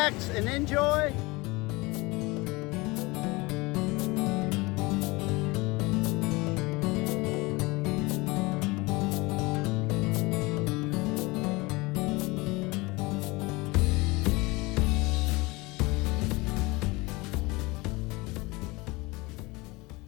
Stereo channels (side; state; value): right; quieter; 23.7 dB